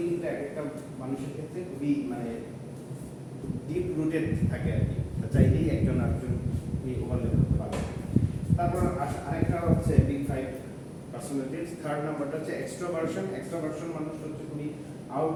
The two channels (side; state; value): both; identical; correlation 1.00